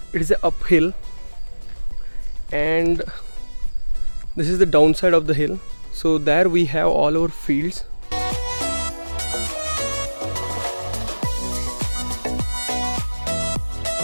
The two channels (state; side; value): inverted; both; correlation -1.00